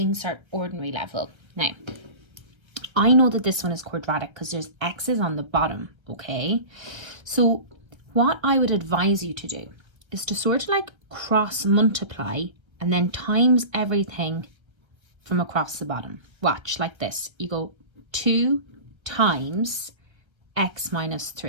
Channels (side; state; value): left; late; 1.5 ms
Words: cert ordinary level. Now, I know that this one is quadratic because there's x's on the bottom, okay? So what I would advise you to do is to sort of like cross multiply and then times everything from across the bottom. Watch, like this. You go 2 times x minus